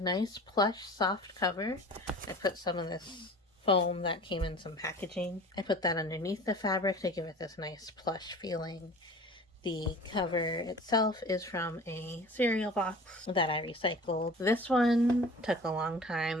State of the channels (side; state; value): both; normal; correlation 0.41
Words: nice plush soft cover. I put some of this foam that came in some packaging. I put that underneath the fabric to give it this nice plush feeling. The cover itself is from a cereal box that I recycled. This one took a long time.